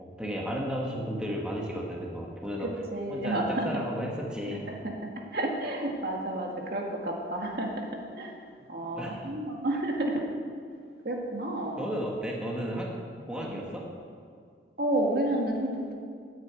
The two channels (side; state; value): both; normal; correlation 0.43